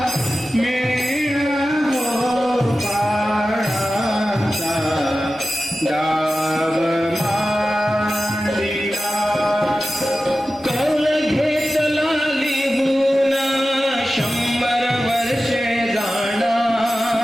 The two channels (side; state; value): both; normal; correlation 0.94